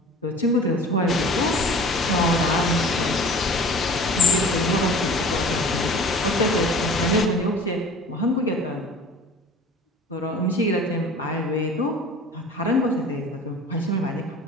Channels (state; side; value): normal; both; correlation 0.43